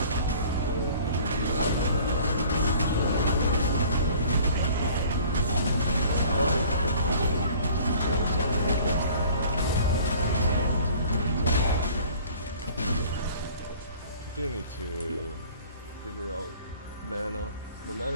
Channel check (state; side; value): inverted; both; correlation -0.49